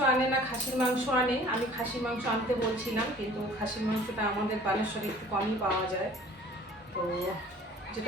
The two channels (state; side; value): normal; both; correlation 0.50